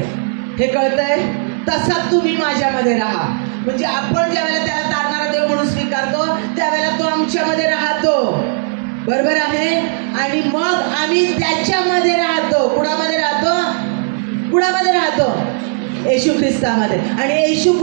हे कळतंय? तसा तुम्ही माझ्यामध्ये राहा. म्हणजे आपण ज्या वेळेला त्याला तारणारा देव म्हणून स्वीकारतो, त्यावेळेला तो आमच्यामध्ये राहतो. बरोबर आहे? आणि मग आम्ही त्याच्यामध्ये राहतो. कुणामध्ये राहतो? कुणामध्ये राहतो? येशू ख्रिस्तामध्ये. आणि येशू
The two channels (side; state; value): left; silent; 68 dB below the other